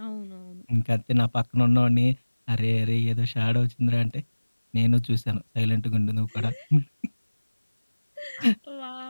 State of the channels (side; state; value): both; inverted; correlation -1.00